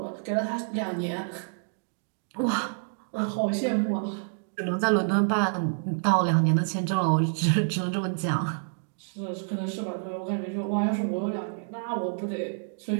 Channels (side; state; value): left; silent; digital silence